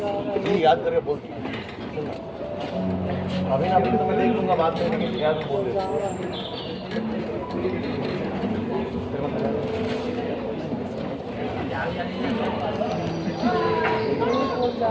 याद करके बोल अभी ना तो मैं देख लूंगा बात करने के याद बोल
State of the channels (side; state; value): both; identical; correlation 1.00